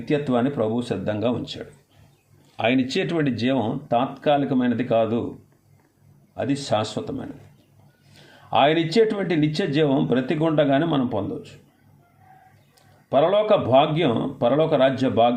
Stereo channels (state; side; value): identical; both; correlation 1.00